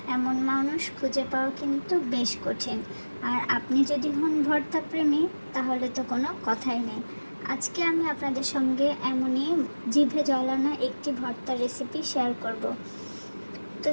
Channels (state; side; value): inverted; both; correlation -1.00